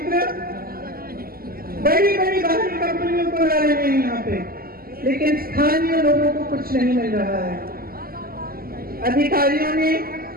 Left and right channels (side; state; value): left; late; 0.43 ms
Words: बड़ी बड़ी बाहरी कंपनियों को ला रहे हैं यहाँ पे, लेकिन स्थानीय लोगों को कुछ नहीं मिल रहा है। अधिकारियों ने